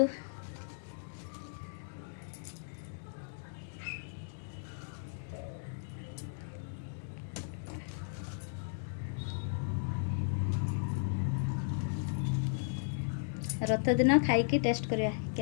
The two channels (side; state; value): right; silent; digital silence